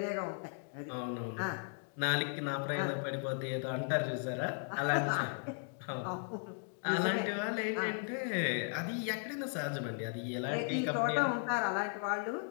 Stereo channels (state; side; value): silent; right; 54 dB below the other